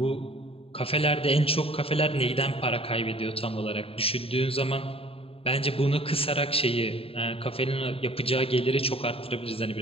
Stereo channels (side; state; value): right; late; 0.27 ms